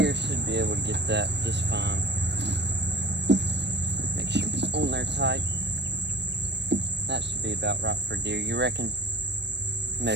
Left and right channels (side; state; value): left; late; 0.50 ms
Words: should be able to get that just fine. Make sure it's on there tight. That should be about right for deer. You reckon?